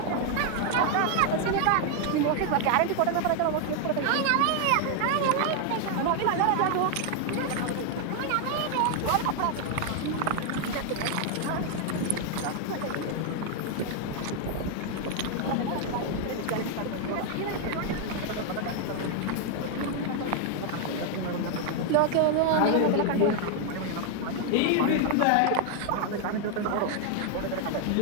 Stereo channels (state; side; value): different; both; correlation 0.00